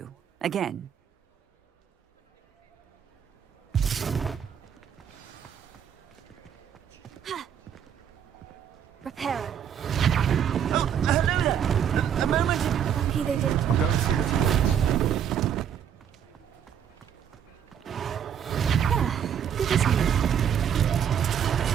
again. Reparo. Oh, hello there. A moment. Lucky they didn't. I'll go and see what he wants. Good as new.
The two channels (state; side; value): quieter; left; 8.7 dB